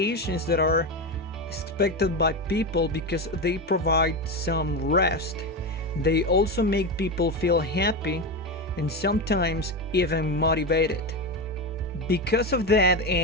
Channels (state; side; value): normal; both; correlation 0.16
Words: that are expected by people because they provide some rest. They also make people feel happy and sometimes even motivated. Because of that,